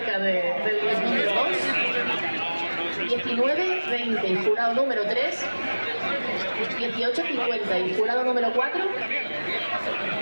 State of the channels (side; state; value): both; inverted; correlation -1.00